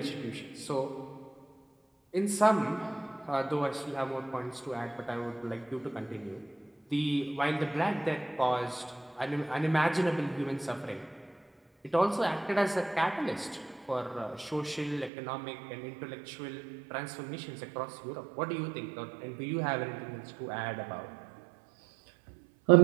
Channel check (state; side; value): drops out; left; at 15.1 s